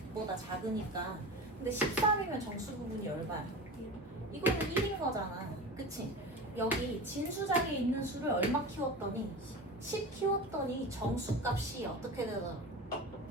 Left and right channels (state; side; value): normal; both; correlation 0.30